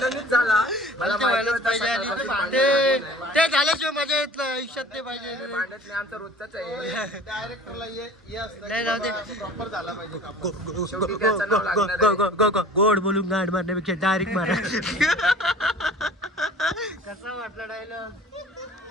मला ते झाल्याशिवाय मजा येत नाही आयुष्यात. ते पाहिजे आमचा रोजचाच आहे. डायरेक्टरला गोड बोलून गाड मारण्यापेक्षा डायरेक्ट मारा. कसा वाटला डायलॉग?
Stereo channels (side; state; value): both; normal; correlation 0.45